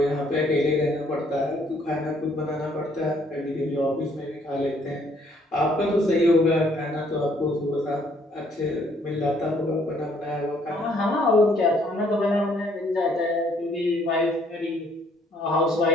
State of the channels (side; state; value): both; normal; correlation 0.65